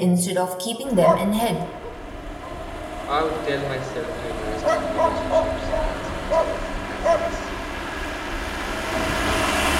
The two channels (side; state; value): both; identical; correlation 1.00